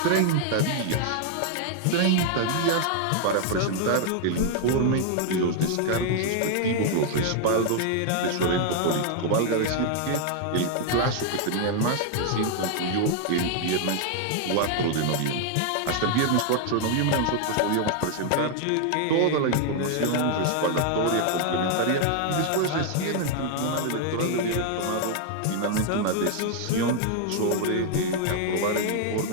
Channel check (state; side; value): different; both; correlation 0.00